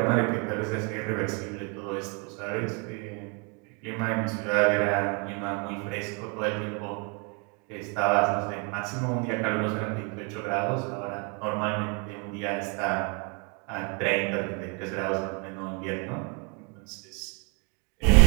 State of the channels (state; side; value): quieter; left; 34.4 dB